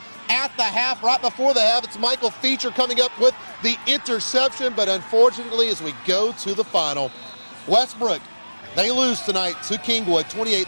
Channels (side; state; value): both; inverted; correlation -1.00